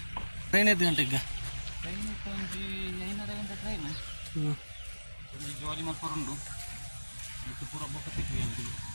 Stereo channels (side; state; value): both; inverted; correlation -1.00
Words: ಟ್ರೈನ್ ಐದು ಗಂಟೆಗೆ ಟ್ರೈನ್ ಒಂಜಿ 5:30 ಗಂಟೆ ಟ್ರೈನ್ ಒಂಜಿ ಜೋಲಿ ಮಲ್ಪರುಂಡು ಇತ್ತು ಪೂರ ಬೊಕ್ಕ ಸಿಕ್ಕಿದೆ ಅಂತಿಲ್ಲ